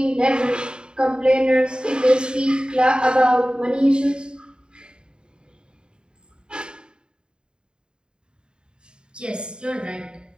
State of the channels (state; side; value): late; left; 0.050 ms